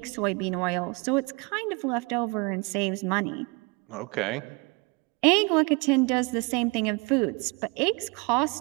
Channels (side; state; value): left; quieter; 29.1 dB